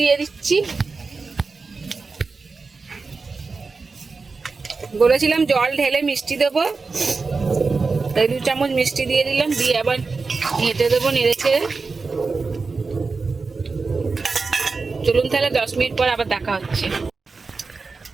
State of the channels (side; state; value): left; quieter; 4.3 dB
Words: দিয়ে দিচ্ছি। বলেছিলাম জল ঢেলে মিষ্টি দেবো, তাই 2 চামচ মিষ্টি দিয়ে দিলাম। দিয়ে আবার ঘেঁটে দেবো নেড়ে চেড়ে। চলুন তাহলে 10 মিনিট পর আবার দেখা হচ্ছে।